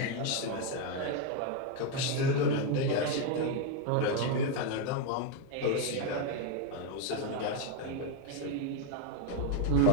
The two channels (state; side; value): different; both; correlation 0.01